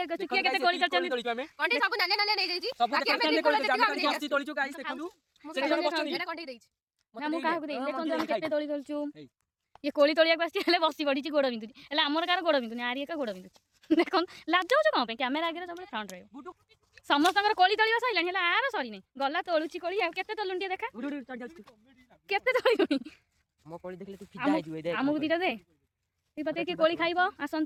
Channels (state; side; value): identical; both; correlation 1.00